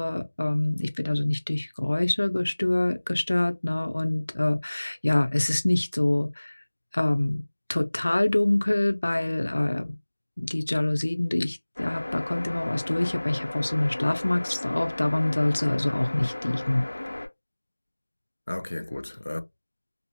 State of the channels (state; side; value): inverted; both; correlation -1.00